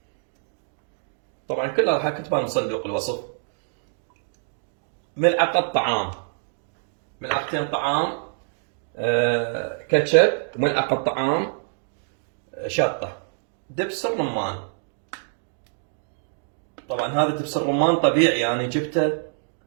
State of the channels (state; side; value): silent; left; digital silence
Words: طبعا كلها راح اكتبها من صندوق الوصف. ملعقة طعام، ملعقتين طعام كاتشب، وملعقة طعام شطة، دبس الرمان. طبعا هذا دبس الرمان طبيعي، يعني جبته